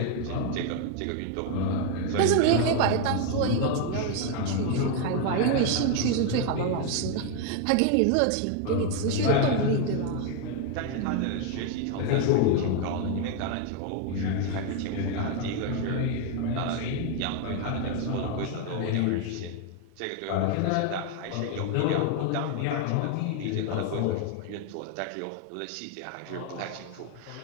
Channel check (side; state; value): both; different; correlation 0.01